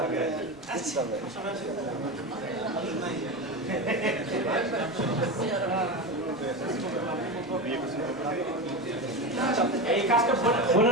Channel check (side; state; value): right; noise; rumble, 26 dB below the sound